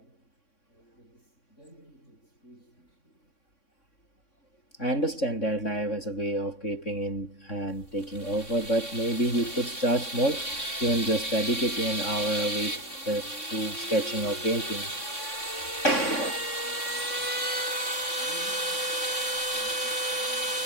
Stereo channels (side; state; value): right; late; 3.6 ms